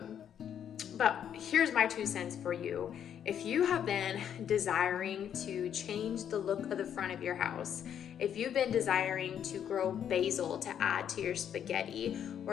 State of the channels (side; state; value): right; quieter; 9.2 dB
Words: But here's my 2 cents for you. If you have been desiring to change the look of the front of your house, if you've been desiring to grow basil to add to your spaghetti, or